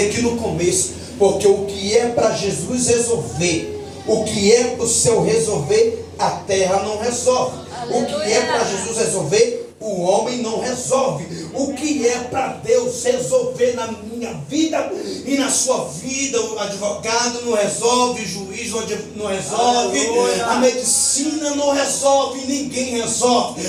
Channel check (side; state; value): both; identical; correlation 1.00